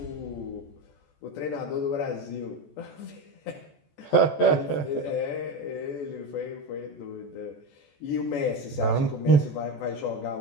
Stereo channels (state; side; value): late; right; 14 ms